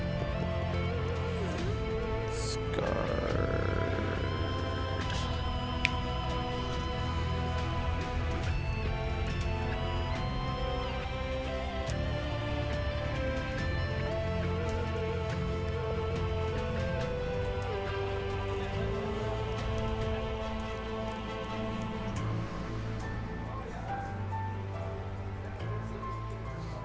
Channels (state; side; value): identical; both; correlation 1.00